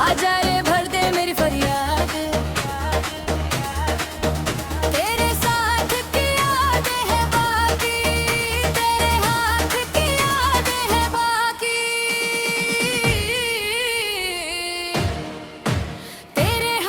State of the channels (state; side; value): identical; both; correlation 1.00